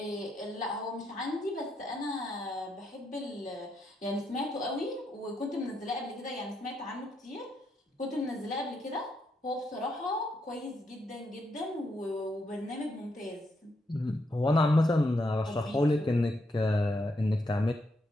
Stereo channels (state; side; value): normal; both; correlation 0.79